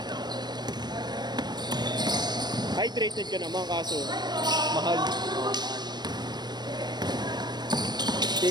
Hydrated ka naman kaso mahal.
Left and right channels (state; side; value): late; left; 0.21 ms